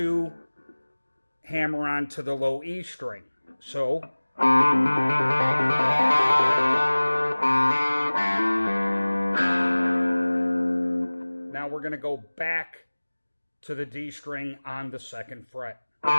hammer on to the low E string. So... Now we're going to go back to the D string on the 2nd fret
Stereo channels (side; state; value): both; inverted; correlation -1.00